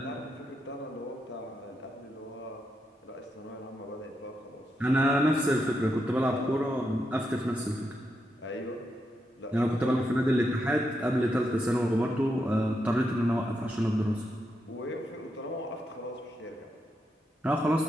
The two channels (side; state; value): both; normal; correlation 0.83